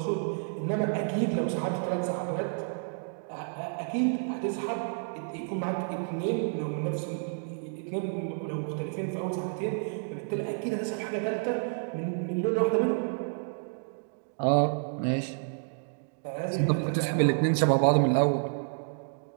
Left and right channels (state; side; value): silent; left; digital silence